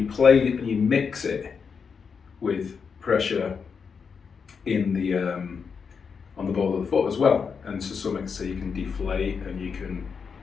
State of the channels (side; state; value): right; quieter; 5.9 dB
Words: play and you mix it with pressure in the on the ball of the foot as well, and to some extent so you can deflate and you can